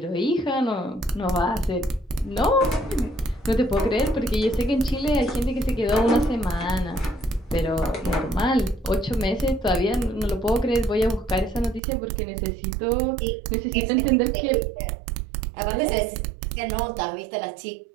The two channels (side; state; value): left; drops out; at 11.8 s